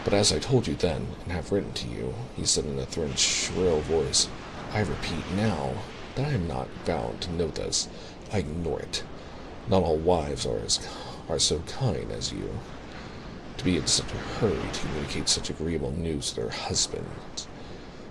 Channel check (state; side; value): identical; both; correlation 1.00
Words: "But as I told you then, and have written to you," he said in a thin, shrill voice, "I repeat now that I am not bound to know this. I ignore it. Not all wives are so kind as you, to be in such a hurry to communicate such agreeable news to their husbands."